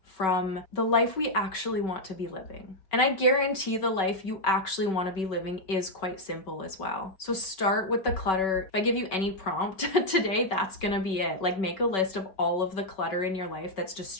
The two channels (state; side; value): late; right; 5.3 ms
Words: from the life we actually want to be living. And I guarantee the life you actually want to be living is quite simple as well. So start with the clutter. If I give you any prompt today, that's gonna be it. Like, make a list of all of the clutter in your life that's